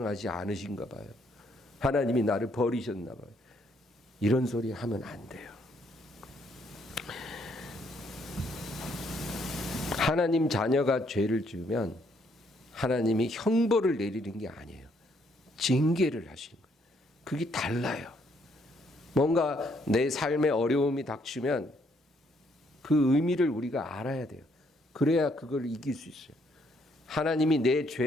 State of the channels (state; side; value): normal; both; correlation 0.70